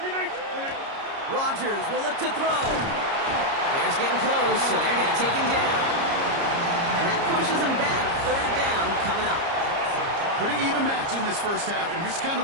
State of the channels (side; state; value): left; late; 30 ms